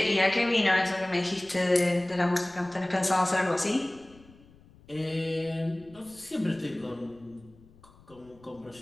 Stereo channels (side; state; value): left; noise; rumble, 26 dB below the sound